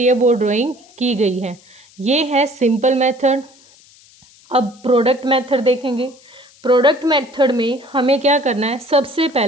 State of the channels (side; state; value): left; noise; hiss, 27 dB below the sound